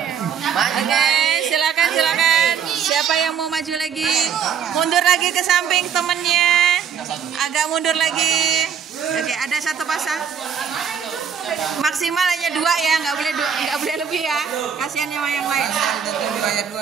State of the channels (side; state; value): left; quieter; 7.6 dB